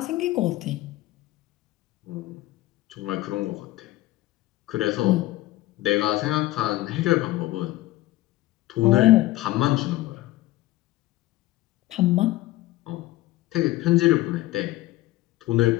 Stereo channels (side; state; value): right; quieter; 17.3 dB